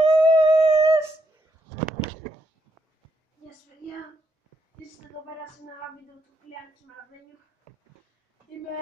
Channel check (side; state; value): both; normal; correlation 0.78